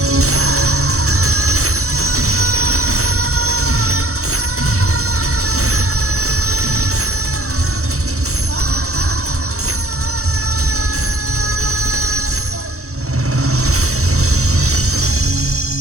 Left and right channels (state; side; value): late; left; 0.64 ms